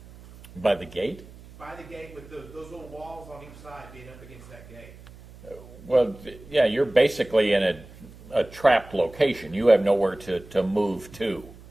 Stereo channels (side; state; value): right; noise; hum, 20 dB below the sound